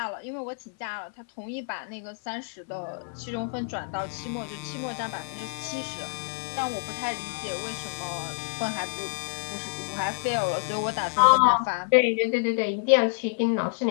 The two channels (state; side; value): silent; right; 57 dB below the other